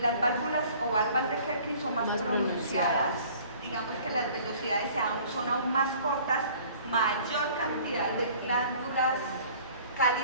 Las válvulas o válvulas de Kerkin son más pronunciadas. Digamos que las velocidades son aún más cortas, mayor cantidad de glándulas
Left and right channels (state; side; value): inverted; both; correlation -0.51